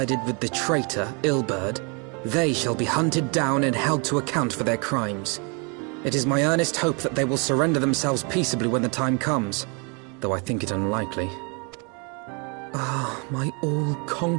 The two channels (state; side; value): quieter; left; 34.1 dB